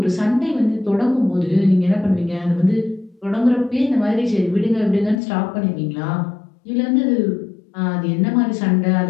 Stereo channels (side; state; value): right; drops out; at 5.2 s